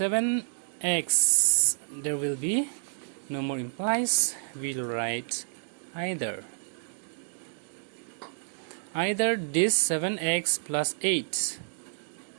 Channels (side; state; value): left; silent; digital silence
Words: there will be no more implies. We'll write either this 7x plus 8